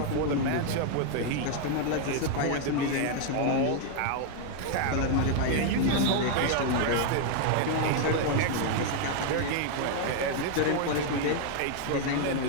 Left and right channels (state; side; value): different; both; correlation 0.00